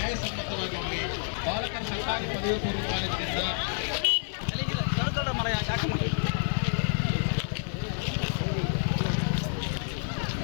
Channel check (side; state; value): right; silent; digital silence